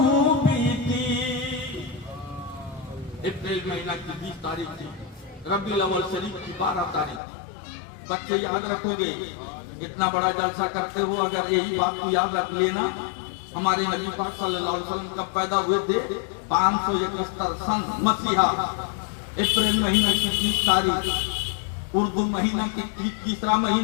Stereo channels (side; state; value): right; drops out; at 7.2 s